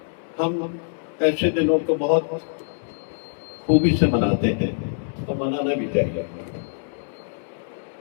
हम ऐसे दिनों को बहुत खूबी से मनाते हैं और मनाना भी चाहिए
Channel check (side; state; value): right; silent; 62 dB below the other